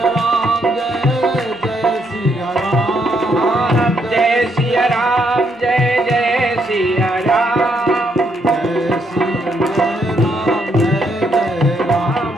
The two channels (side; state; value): both; normal; correlation 0.75